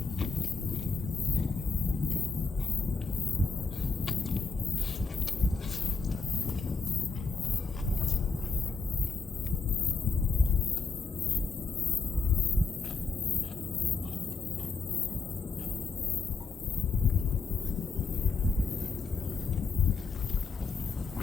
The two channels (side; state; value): right; quieter; 4.5 dB